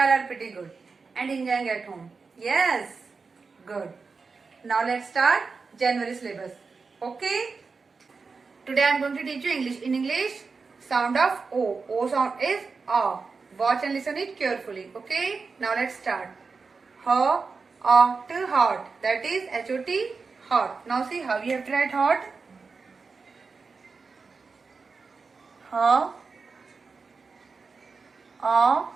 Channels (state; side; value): quieter; left; 4.7 dB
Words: are pretty good and enjoying at home. Yes, good. Now let's start January syllabus. Okay? Today I am going to teach you English. In English, sound of O. O sound is A. Watch and listen it carefully. Okay? Now let's start. Hot, hot. That is H-O-T, hot. Now see how you have to write hot. Hot.